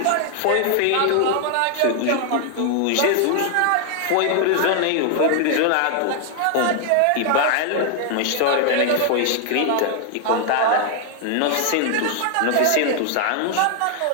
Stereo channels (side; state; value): both; different; correlation 0.00